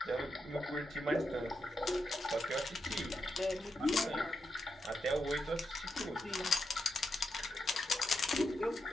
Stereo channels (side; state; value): both; normal; correlation 0.84